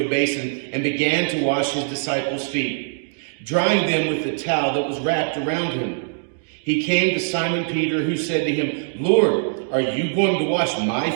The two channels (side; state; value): left; silent; digital silence